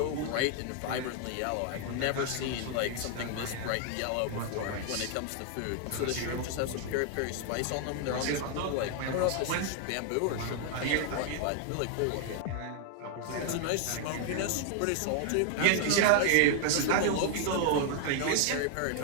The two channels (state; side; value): different; both; correlation 0.00